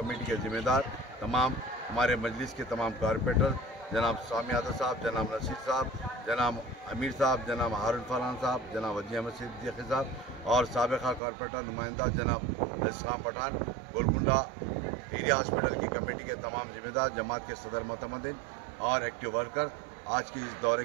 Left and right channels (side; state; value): left; drops out; at 11.2 s